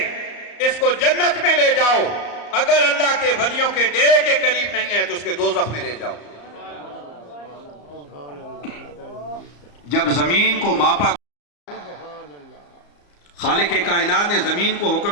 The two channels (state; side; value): late; right; 34 ms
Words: इसको जन्नत में ले जाओ। अगर अल्लाह के वलियों के डेरे के करीब नहीं है तो उसके दोज़ख में ले जाओ। जब जमीन को मापा, खालिक कायनात ने जमीन को